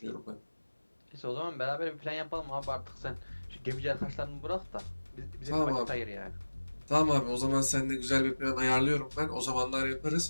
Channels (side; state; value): both; inverted; correlation -1.00